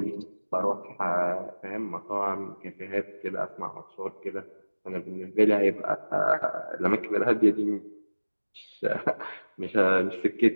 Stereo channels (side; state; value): both; inverted; correlation -1.00